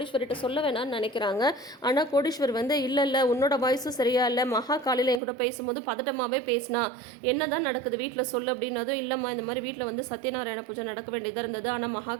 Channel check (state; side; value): drops out; left; at 5.2 s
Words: சொல்ல வேணாம்னு நினைக்கிறாங்க. ஆனால் கோடீஸ்வரி வந்து இல்லை உன்னோட வாய்ஸும் சரியா இல்லை, மகா காலையில் என் கூட பேசும்போது பதட்டமாகவே பேசினா, என்ன தான் நடக்குது வீட்டில் சொல்லு அப்படின்னதும், இல்லைம்மா இந்த மாதிரி வீட்டில் வந்து சத்யநாராயண பூஜை நடக்க வேண்டியதாக இருந்தது, ஆனால்